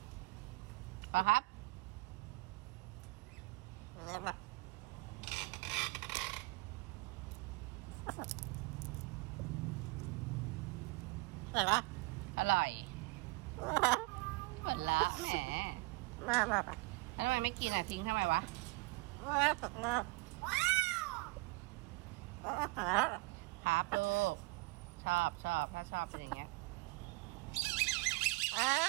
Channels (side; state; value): left; quieter; 24.6 dB